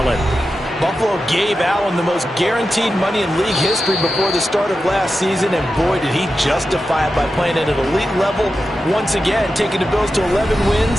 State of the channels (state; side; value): normal; both; correlation 0.91